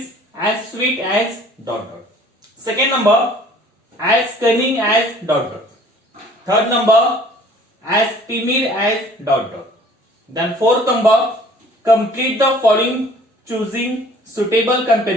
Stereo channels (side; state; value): both; normal; correlation 0.53